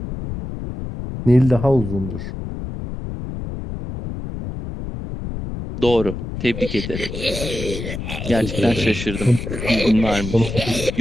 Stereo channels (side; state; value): left; noise; rumble, 7 dB below the sound